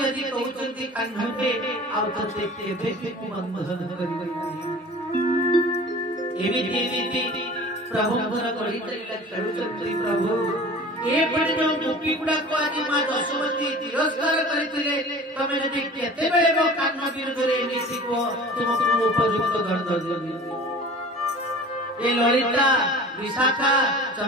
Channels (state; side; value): normal; both; correlation 0.41